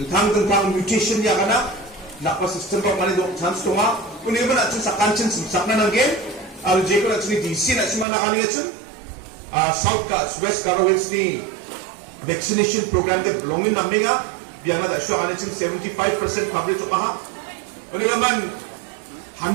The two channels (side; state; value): left; drops out; at 8.1 s